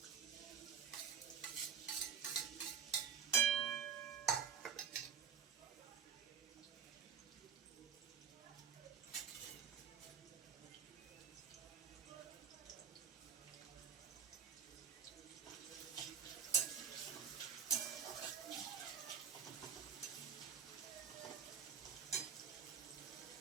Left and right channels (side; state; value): left; quieter; 7.3 dB